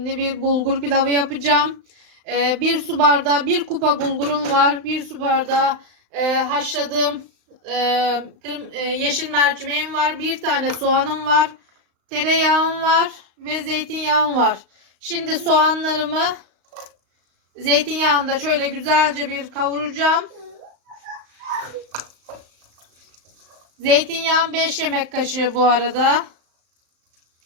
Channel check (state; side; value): late; left; 35 ms